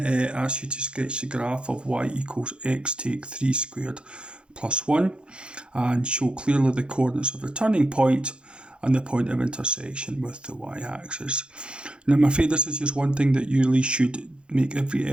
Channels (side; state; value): left; late; 0.054 ms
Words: asks you to sketch the graph of y equals x take 3 squared plus 1 and show clearly the coordinates of the turning point and the point of intersection with the y-axis. Now I'm afraid this is just one thing that you really should make every